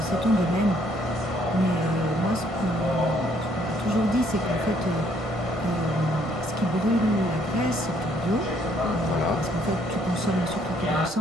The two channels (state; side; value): normal; both; correlation 0.66